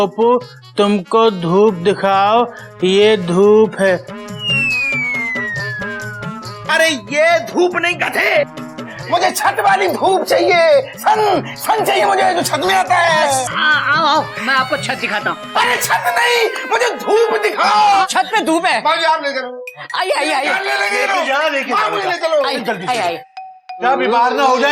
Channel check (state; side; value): identical; both; correlation 1.00